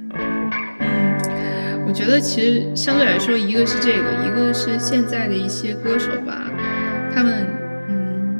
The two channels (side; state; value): both; inverted; correlation -1.00